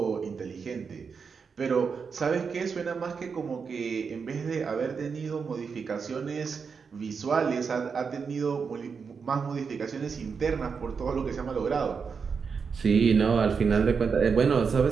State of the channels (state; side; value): quieter; left; 5.7 dB